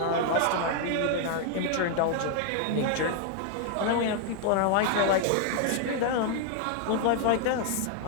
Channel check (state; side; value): different; both; correlation 0.00